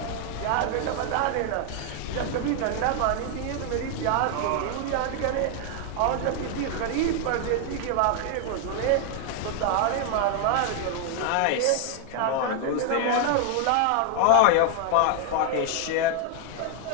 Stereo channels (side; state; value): both; different; correlation 0.00